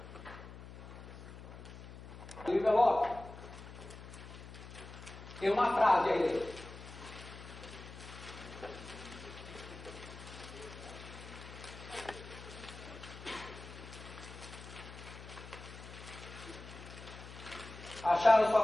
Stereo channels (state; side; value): noise; left; hum, 13 dB below the sound